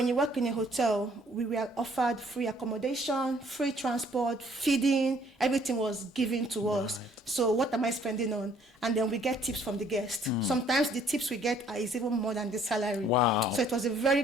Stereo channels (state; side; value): normal; both; correlation 0.61